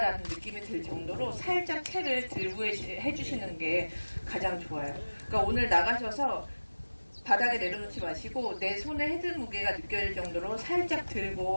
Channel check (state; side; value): inverted; both; correlation -1.00